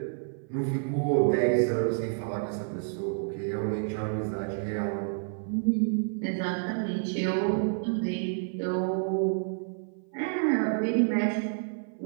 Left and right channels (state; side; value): silent; left; 56 dB below the other